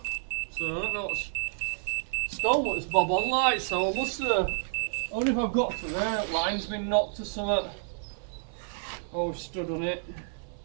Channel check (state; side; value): silent; left; 57 dB below the other